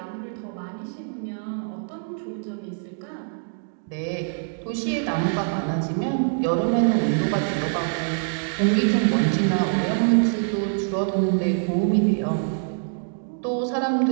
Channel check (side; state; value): left; silent; digital silence